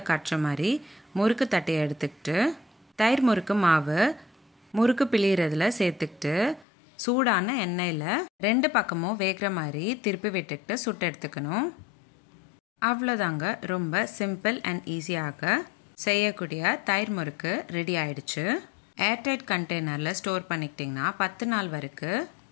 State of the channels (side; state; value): right; drops out; at 6.7 s